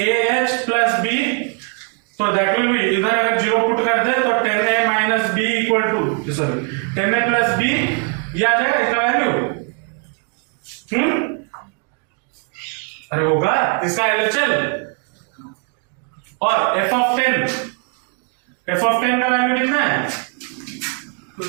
plus b, तो दैट विल बी, इधर अगर 0 पुट करते हैं तो 10a minus b equal to 10a plus b, ये आ जाएगा इसका वैल्यू। अरे होगा इसका LHL, और f ऑफ 10 का वैल्यू कितना है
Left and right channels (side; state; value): left; quieter; 37.4 dB